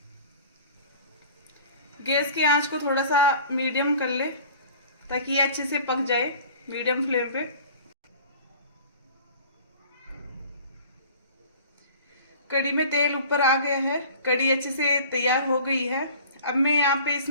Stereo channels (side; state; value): both; inverted; correlation -0.44